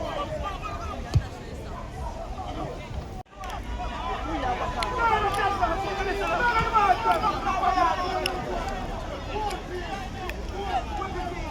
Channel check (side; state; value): both; identical; correlation 1.00